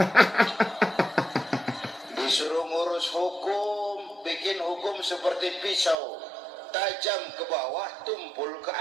Disuruh ngurus hukum, bikin hukum seperti pisau, tajam ke bawah, tumpul ke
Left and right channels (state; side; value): drops out; left; at 6.0 s